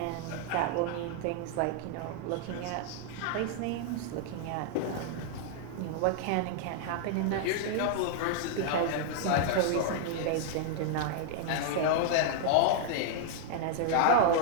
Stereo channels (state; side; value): different; both; correlation 0.00